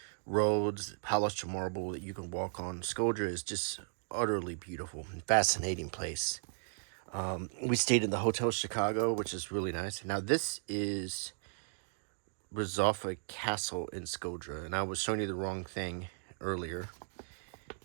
roads, polished marble that you can walk on. Shkodër is just utterly beautiful and fascinating place. We stayed in the Hotel Chicago, which is really nice. Now, this is Rizofa Castle in Shkodër, and I was showing you the wrong thing earlier.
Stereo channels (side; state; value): left; silent; digital silence